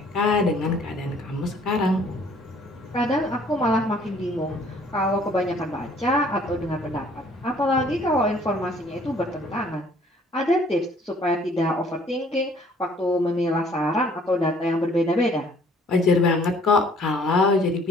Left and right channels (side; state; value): both; normal; correlation 0.58